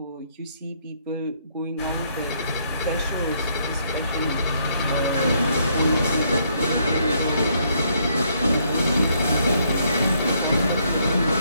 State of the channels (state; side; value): inverted; both; correlation -0.71